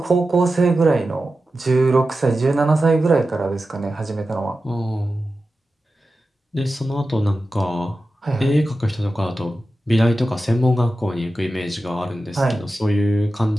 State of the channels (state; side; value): normal; both; correlation 0.93